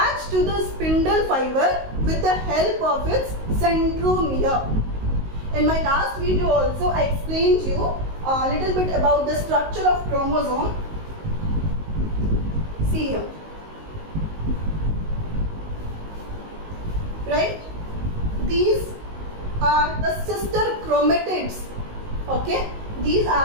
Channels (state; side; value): late; left; 19 ms